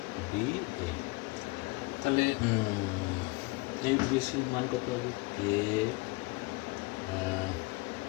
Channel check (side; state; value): right; quieter; 24.4 dB